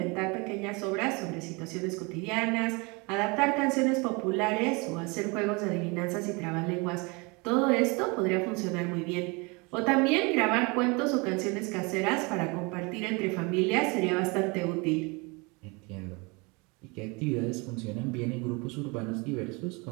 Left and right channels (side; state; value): left; quieter; 28.3 dB